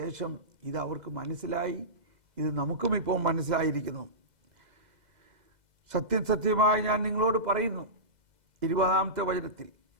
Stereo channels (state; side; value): late; left; 2.0 ms